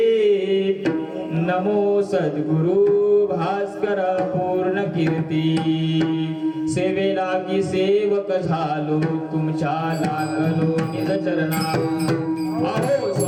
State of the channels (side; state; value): both; identical; correlation 1.00